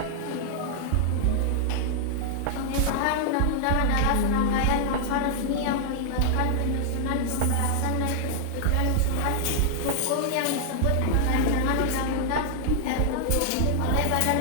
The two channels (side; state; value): both; different; correlation -0.01